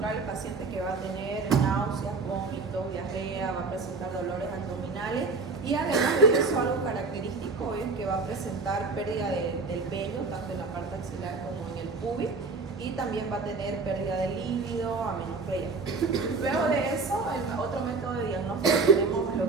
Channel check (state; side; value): quieter; left; 4.2 dB